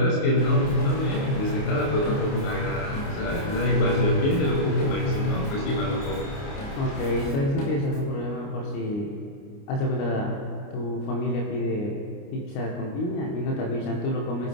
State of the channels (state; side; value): late; right; 29 ms